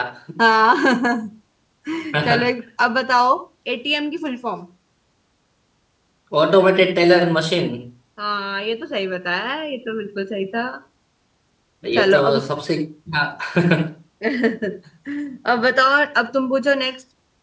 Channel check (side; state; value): both; identical; correlation 1.00